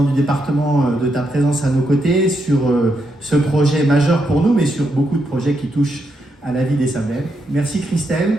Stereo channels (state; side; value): normal; both; correlation 0.81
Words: du département, de ta présence à nos côtés sur ce projet majeur pour nous, mais sur beaucoup de projets qui touchent à la vie des Sablais. Merci